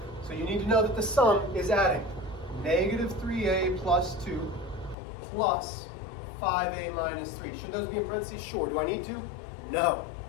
So you need to know that the sum is adding negative 3a plus 2 plus 5a minus 3. Should those be in parentheses? Sure. Do I need to? No.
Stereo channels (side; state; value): right; drops out; at 5.0 s